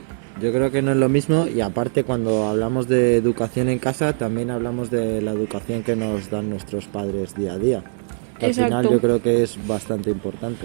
Yo creo que no es lo mismo y aparte cuando hablamos de educación en casa también hablamos de la educación que nos dan nuestros padres día a día. Al final yo creo que es bastante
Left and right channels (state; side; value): silent; left; 65 dB below the other